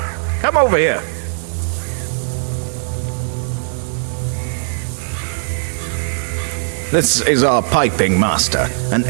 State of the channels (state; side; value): silent; left; digital silence